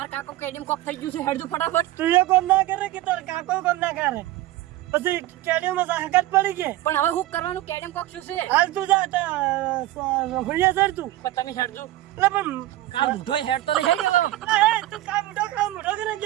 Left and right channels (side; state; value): left; quieter; 15.8 dB